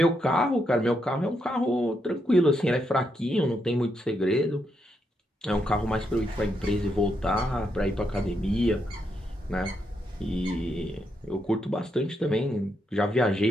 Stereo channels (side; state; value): both; normal; correlation 0.80